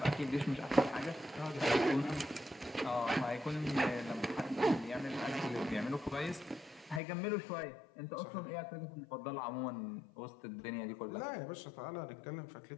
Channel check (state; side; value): drops out; right; at 7.0 s